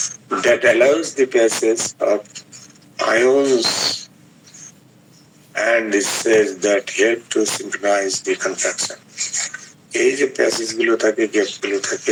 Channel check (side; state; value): both; identical; correlation 1.00